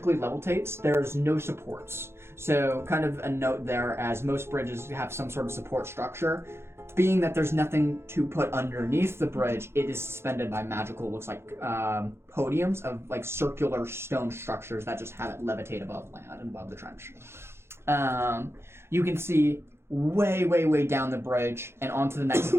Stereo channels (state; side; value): late; left; 0.12 ms